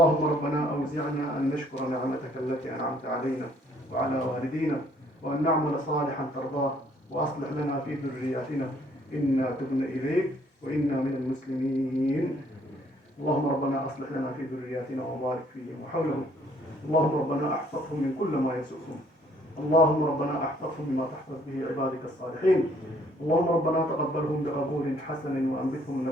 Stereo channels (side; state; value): both; normal; correlation 0.63